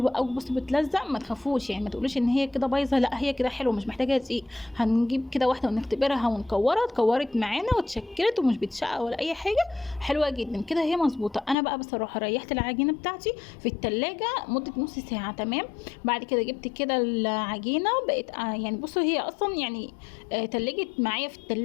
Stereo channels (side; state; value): right; drops out; at 11.6 s